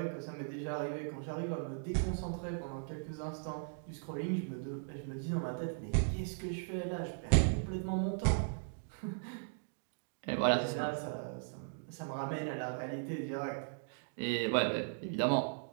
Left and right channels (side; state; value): left; silent; digital silence